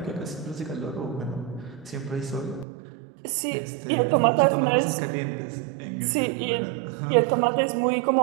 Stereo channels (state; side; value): drops out; left; at 2.7 s